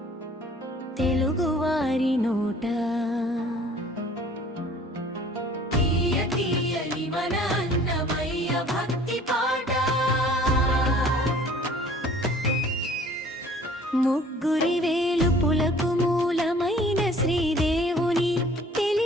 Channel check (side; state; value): both; normal; correlation 0.52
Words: తెలుగువారి నోట తీయ తీయని మన అన్నమయ్య భక్తి పాట ముగ్గురి వేలుపులకు మూలమైన శ్రీదేవుని